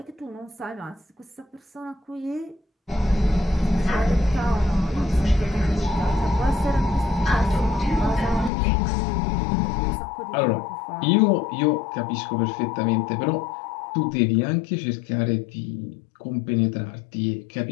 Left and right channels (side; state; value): right; drops out; at 8.5 s